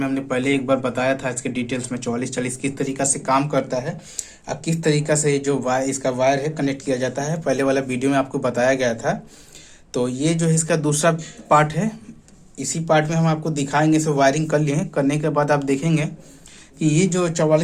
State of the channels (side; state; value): both; identical; correlation 1.00